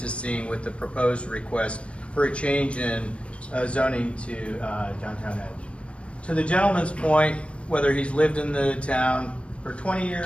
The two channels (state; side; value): late; right; 0.061 ms